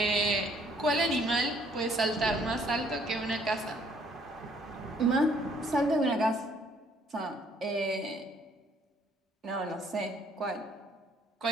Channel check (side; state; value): both; normal; correlation 0.63